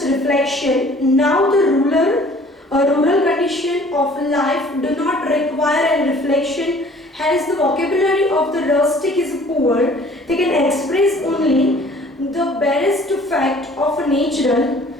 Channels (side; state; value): both; normal; correlation 0.53